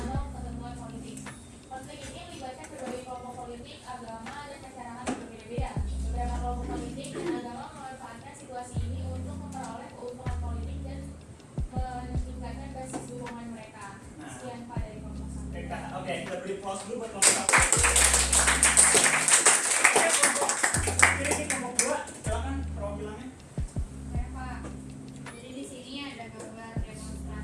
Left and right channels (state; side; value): identical; both; correlation 1.00